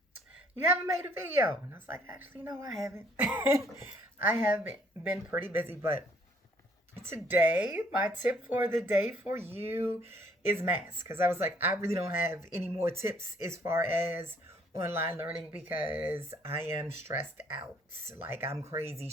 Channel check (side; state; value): both; normal; correlation 0.63